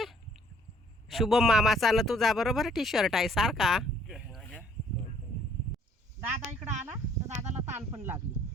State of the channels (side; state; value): both; normal; correlation 0.61